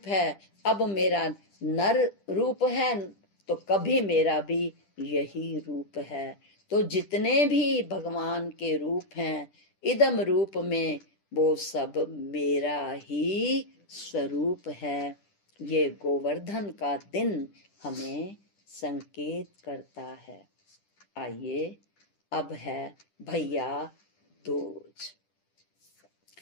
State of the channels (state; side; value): late; right; 10 ms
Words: है। अब मेरा नर रूप है तो कभी मेरा भी यही रूप है। तो जितने भी भगवान के रूप हैं इदम रूप में, वो सब मेरा ही स्वरूप है। ये गोवर्धन का दिन हमें संकेत करता है। आइए अब है भैया दूज।